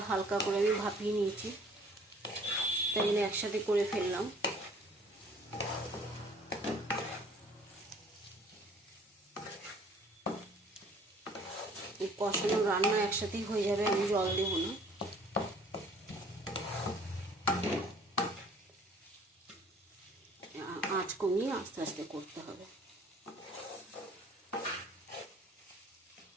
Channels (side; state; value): both; normal; correlation 0.54